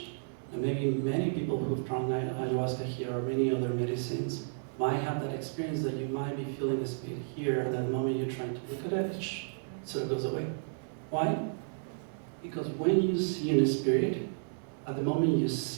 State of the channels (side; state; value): left; silent; digital silence